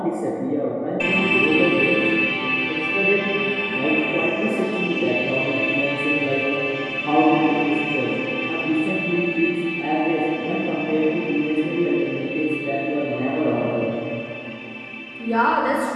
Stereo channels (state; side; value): identical; both; correlation 1.00